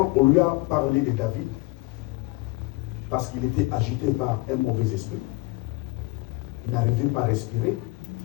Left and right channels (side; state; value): right; quieter; 22.1 dB